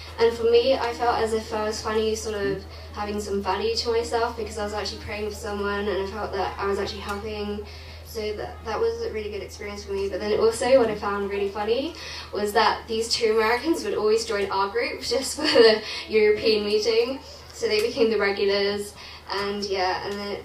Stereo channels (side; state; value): both; identical; correlation 1.00